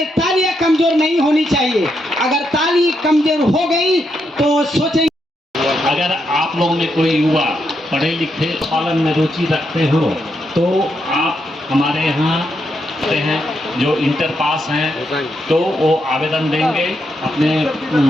तालियां कमजोर नहीं होनी चाहिए। अगर ताली कमजोर हो गई तो सोचेंगे। अगर आप लोगों में कोई युवा पढ़े लिखे पालन में रुचि रखते हो तो आप हमारे यहाँ आते हैं, जो इंटर पास हैं तो वो आवेदन देंगे अपने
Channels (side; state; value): both; normal; correlation 0.81